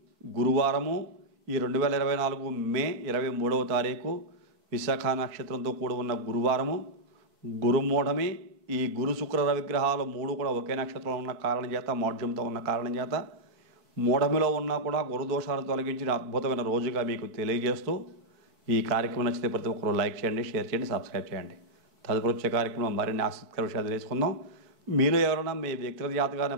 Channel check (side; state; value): left; late; 4.5 ms